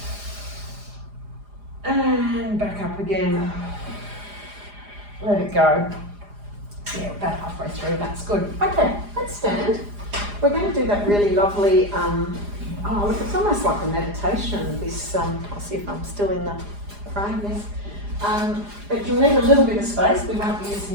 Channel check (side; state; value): left; late; 4.9 ms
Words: and back up again. Let it go. Yeah, about halfway through. That's good. Okay, let's stand. We're going to do that really lovely. Oh, look, it's almost like a meditation. This. I'll see if I'm still in the frame. Yes. But you'll need a little bit of space. We won't be